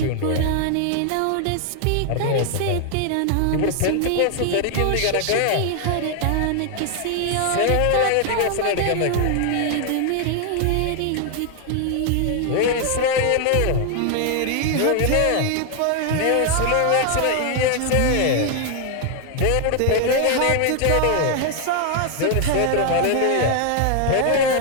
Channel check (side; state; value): both; different; correlation 0.00